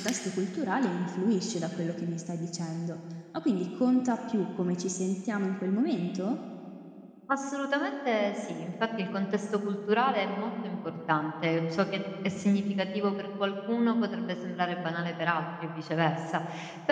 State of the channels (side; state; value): both; identical; correlation 1.00